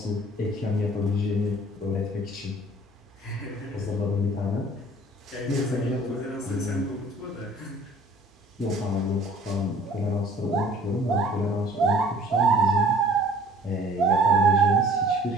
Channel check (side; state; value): both; normal; correlation 0.52